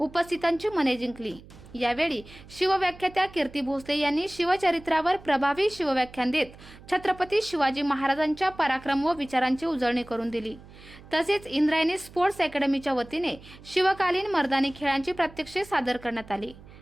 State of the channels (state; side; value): noise; right; hum, 20 dB below the sound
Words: मने जिंकली. यावेळी शिवव्याख्यात्या कीर्ती भोसले यांनी शिवचरित्रावर प्रभावी शिवव्याख्यान देत छत्रपती शिवाजी महाराजांच्या पराक्रम व विचारांची उजळणी करून दिली. तसेच इंद्रायणी स्पोर्ट्स अकॅडमीच्या वतीने शिवकालीन मर्दानी खेळांची प्रात्यक्षिके सादर करण्यात आली.